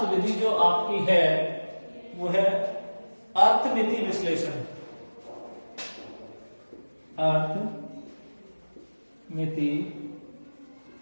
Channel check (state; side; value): inverted; both; correlation -1.00